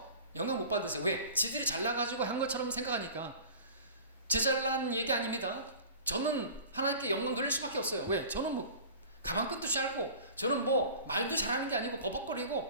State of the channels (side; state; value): both; inverted; correlation -0.40